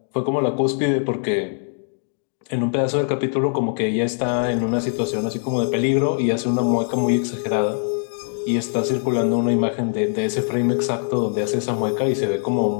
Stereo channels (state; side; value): silent; right; 64 dB below the other